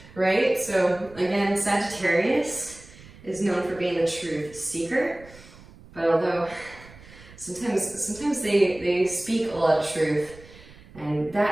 right? So again, Sagittarius is known for being the truth seeker, but although sometimes they speak a lot of truth, and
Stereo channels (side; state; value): right; noise; rumble, 21 dB below the sound